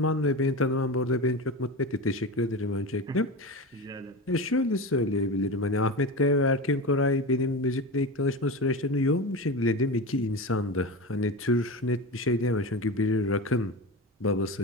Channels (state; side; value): normal; both; correlation 0.25